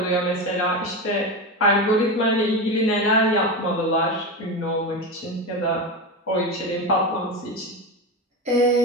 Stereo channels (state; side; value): normal; both; correlation 0.19